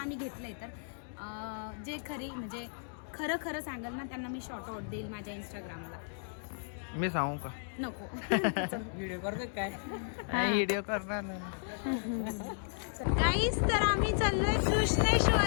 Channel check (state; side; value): silent; right; digital silence